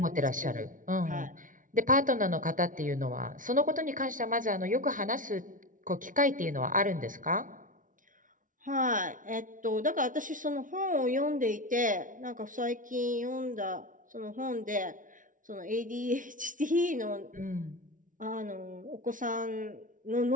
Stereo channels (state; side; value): late; left; 0.38 ms